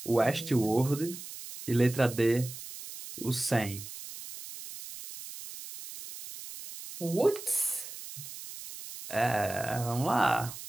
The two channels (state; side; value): noise; right; hiss, 12 dB below the sound